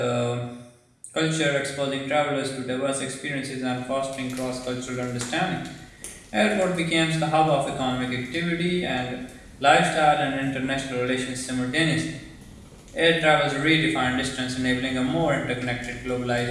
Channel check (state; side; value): identical; both; correlation 1.00